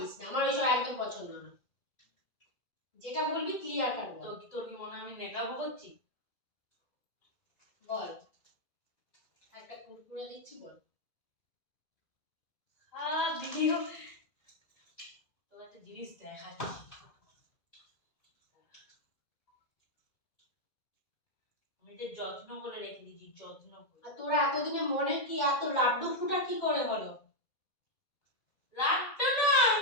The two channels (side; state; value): right; late; 2.1 ms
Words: না, আমার ওইসব একদম পছন্দ না। যেটা বলবি ক্লিয়ার কাট বল। তোর কি মনে হয় আমি নেকাবো করছি? বল, একটা কুরকুরে দিচ্ছি বল। ভিডিও তোর একটা জিনিস দেখাচ্ছি, আমি এটা যত্ন করে রেখে দিয়েছি, যত্ন করে। আর তোরা এতদিনে মনে কি এত লাড্ডু ফুটা কি করে হলো? লাড্ডু না,